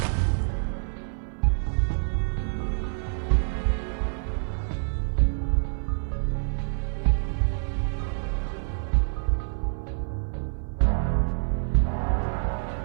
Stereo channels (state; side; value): silent; left; digital silence